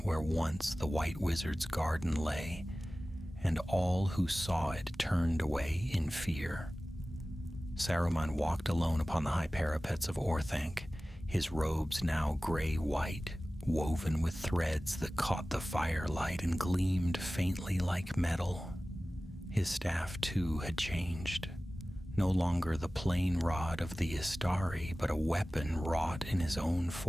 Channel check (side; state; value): both; normal; correlation 0.97